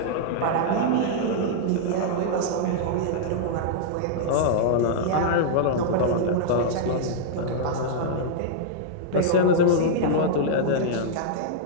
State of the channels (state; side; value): different; both; correlation -0.01